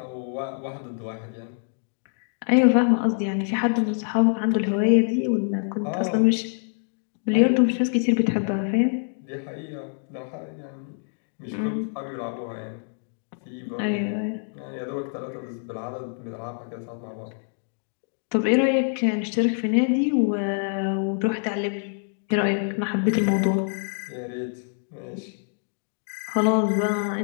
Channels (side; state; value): right; silent; 61 dB below the other